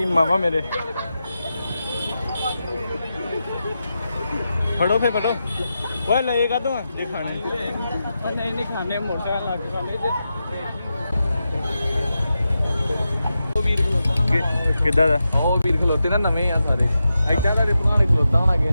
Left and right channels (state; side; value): inverted; both; correlation -0.89